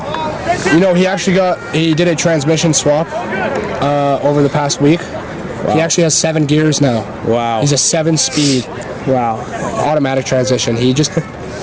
You know, he did a transmission swap over the past week. Wow. He actually has 7 gears now. Wow. He's a 7-speed. Wow. Automatic transmission. He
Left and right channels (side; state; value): both; identical; correlation 1.00